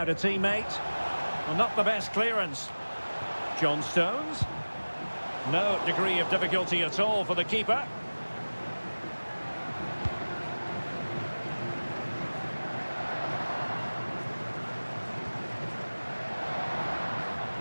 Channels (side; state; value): both; inverted; correlation -1.00